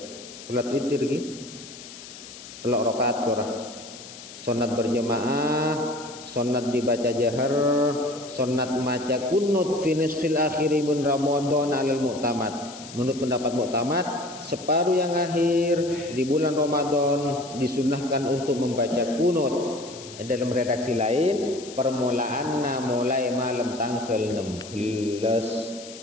Salat witir ki telok rakaat korah. Sunat berjamaah, sunat dibaca jahar, sunat maca kunut fi nisfil akhiri min Ramadan alal mu'tamad. Menurut pendapat muktamad, separuh yang akhir di bulan Ramadan disunahkan untuk membaca kunut. Dalam redaksi lain, permulaanna mulai malam tanggal 16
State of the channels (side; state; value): left; noise; hiss, 15 dB below the sound